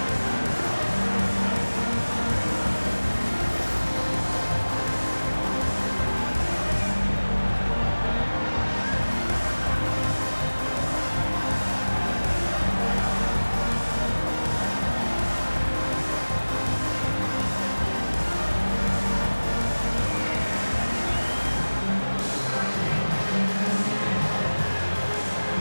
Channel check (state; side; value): inverted; both; correlation -1.00